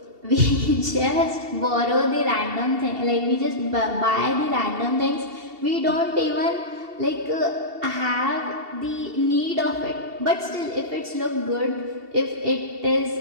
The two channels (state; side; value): late; left; 2.7 ms